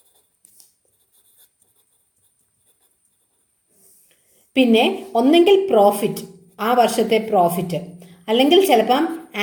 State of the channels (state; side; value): identical; both; correlation 1.00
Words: പിന്നെ ഒന്നെങ്കിൽ പ്രോഫിറ്റ്, ആ വർഷത്തെ പ്രോഫിറ്റ്, അല്ലെങ്കിൽ ചിലപ്പം